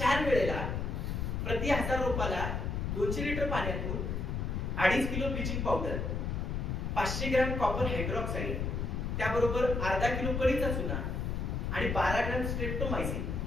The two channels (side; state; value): left; noise; rumble, 1 dB below the sound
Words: वेळेला प्रति 1000 रोपाला 200 लिटर पाण्यातून 2.5 kilo bleaching powder, 500 gram copper hydroxide, त्याबरोबर अर्धा किलो कळीचा चुना आणि 12 ग्रॅम स्ट्रेप्टोमायसिन